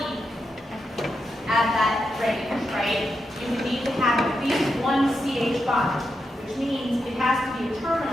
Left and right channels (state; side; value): normal; both; correlation 0.86